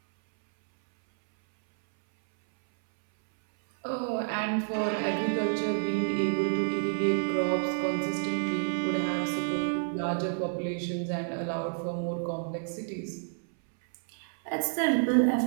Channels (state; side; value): silent; left; 58 dB below the other